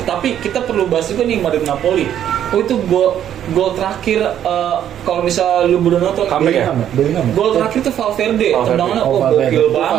kita perlu bahas juga nih Madrid Napoli. Oh itu gol terakhir kalau misal lu belum nonton Comeback ya? Bellingham. gol terakhir tuh Valverde, Valverde. tendangannya Oh, gokil Valverde.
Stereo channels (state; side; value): quieter; left; 10.4 dB